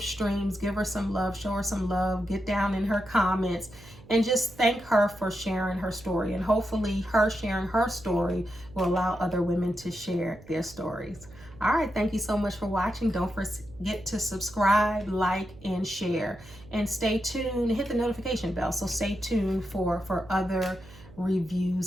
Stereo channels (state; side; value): noise; right; hum, 21 dB below the sound